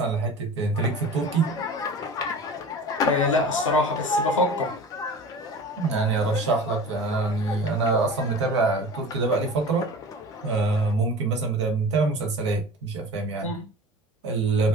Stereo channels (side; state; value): both; normal; correlation 0.37